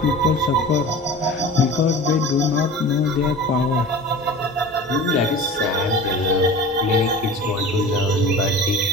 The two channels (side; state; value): both; normal; correlation 0.37